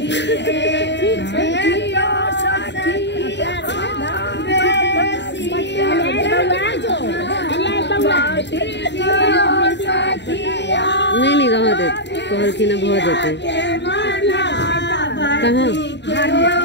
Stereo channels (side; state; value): right; late; 0.51 ms